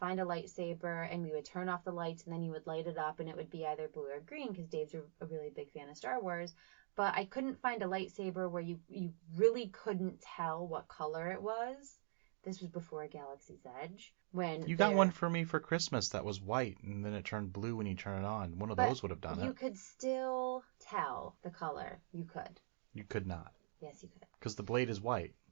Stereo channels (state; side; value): silent; left; digital silence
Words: a lightsaber and we would turn off the lights and then you would light it up and it would be either blue or green because Dave's a really big fan of Star Wars. But I couldn't find a lightsaber where you really couldn't tell what color it was. This was before Galaxy's Edge. You got one for me for Christmas that was white and then it turned blue when you turn it on. One of those would have done it. You could still tell the color. You could. You could not. Yes, you could. Because the blade is white.